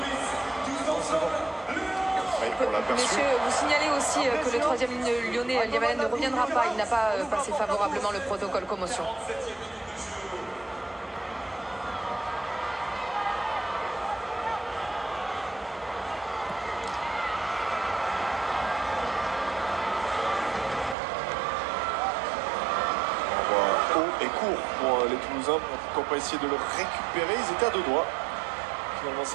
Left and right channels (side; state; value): left; drops out; at 21.0 s